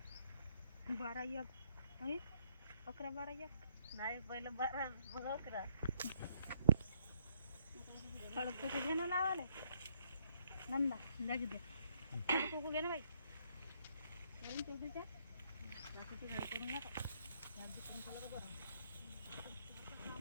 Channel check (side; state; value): both; inverted; correlation -0.71